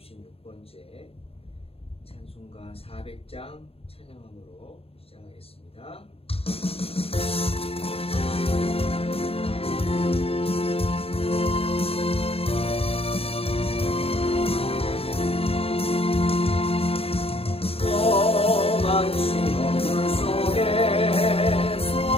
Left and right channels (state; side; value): late; right; 0.28 ms